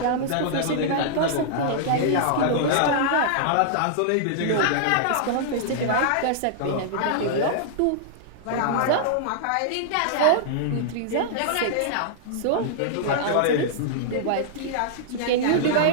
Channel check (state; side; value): different; both; correlation -0.01